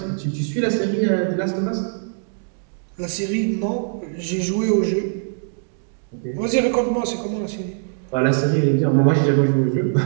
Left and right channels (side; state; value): left; silent; digital silence